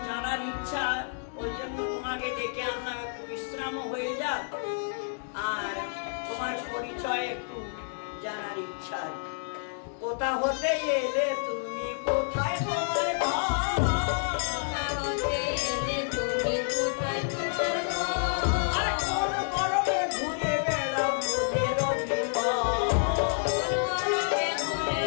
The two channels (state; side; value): silent; right; digital silence